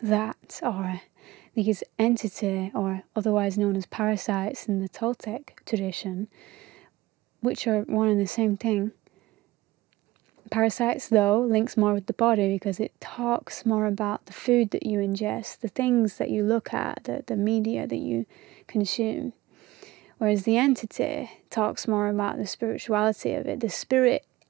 are these entity, or otherwise known as parasites in the Toltec tradition, which are one and the same thing. Parasites, though, links more with the body because it talks more about the food that you ingest, the things that you look at, the media that you consume. Whereas the entity talks more about the spirituality of it, the spirit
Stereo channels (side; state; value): left; quieter; 18.3 dB